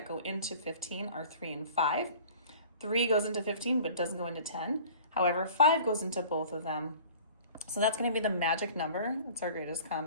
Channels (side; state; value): both; inverted; correlation -0.46